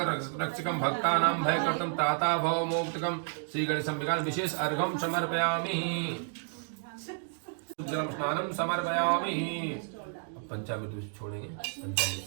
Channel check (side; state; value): left; silent; 57 dB below the other